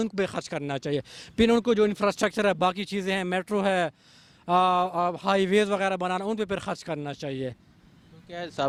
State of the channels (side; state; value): both; identical; correlation 1.00